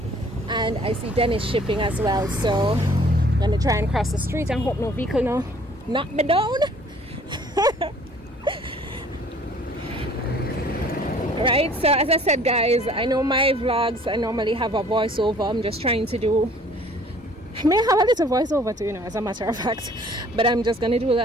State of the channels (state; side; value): normal; both; correlation 0.55